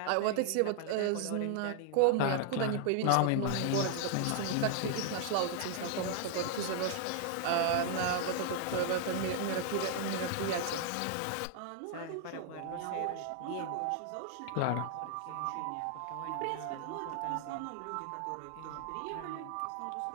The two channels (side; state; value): both; different; correlation 0.00